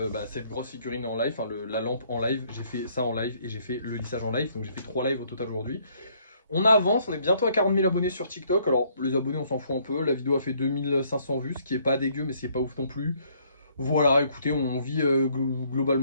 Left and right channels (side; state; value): both; inverted; correlation -0.65